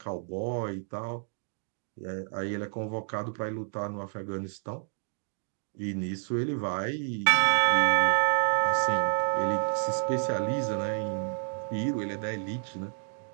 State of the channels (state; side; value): silent; left; 58 dB below the other